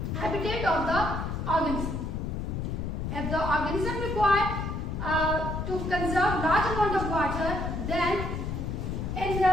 habitat of the organism. If the organism require to conserve large amount of water, then in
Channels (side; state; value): left; noise; rumble, 3 dB below the sound